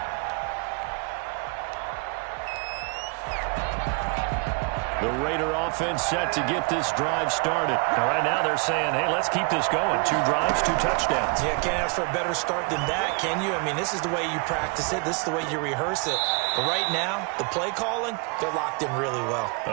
The Raider offense set to get this drive started. Now, right now they're saying, hey, let's keep this going. 2 drives, 2 touchdowns. Yeah, can't ask for a better start than that, can you? I mean, this is the way you practice it. This is the way you rehearse it. But right now, the play calling, they're locked in really well.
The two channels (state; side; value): quieter; left; 34.2 dB